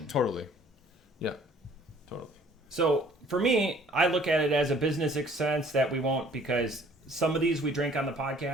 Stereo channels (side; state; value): both; normal; correlation 0.56